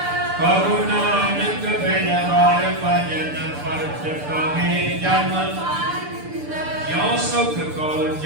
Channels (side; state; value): left; late; 6.8 ms